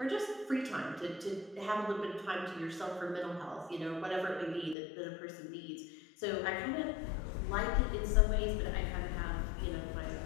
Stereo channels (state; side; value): drops out; right; at 4.8 s